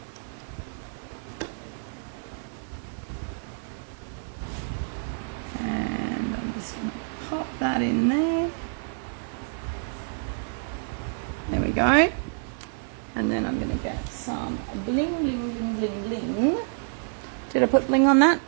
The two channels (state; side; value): silent; left; 58 dB below the other